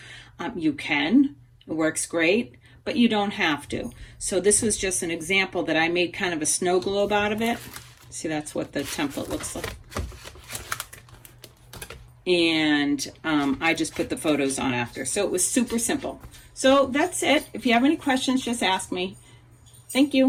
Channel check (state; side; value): identical; both; correlation 1.00